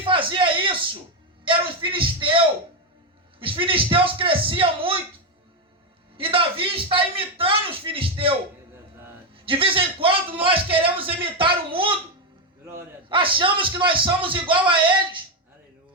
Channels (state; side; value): normal; both; correlation 0.07